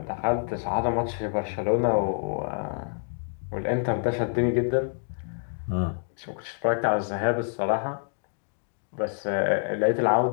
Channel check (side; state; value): right; silent; digital silence